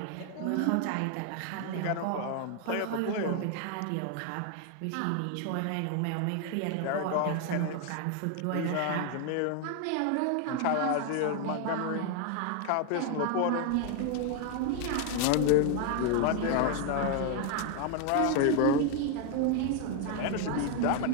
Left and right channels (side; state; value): both; different; correlation 0.01